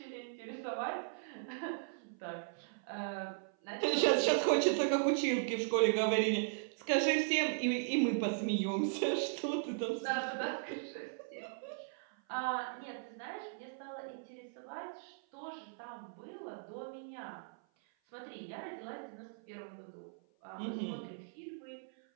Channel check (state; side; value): silent; left; 53 dB below the other